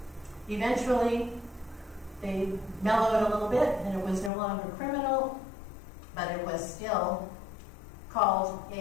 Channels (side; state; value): right; drops out; at 4.3 s